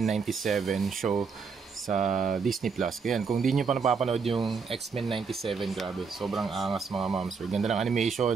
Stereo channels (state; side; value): quieter; left; 5.4 dB